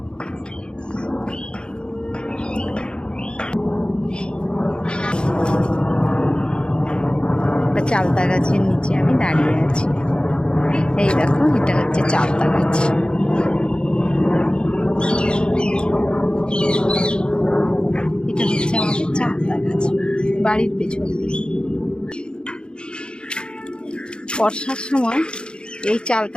চালতা গাছের নিচে আমি দাঁড়িয়ে আছি। এই দেখো, এটা হচ্ছে চালতা গাছ। এটা হচ্ছে আমাদের চালতা গাছ, বাড়ির পেছন দিকে। বর্ষার সময় এই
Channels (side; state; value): right; late; 0.051 ms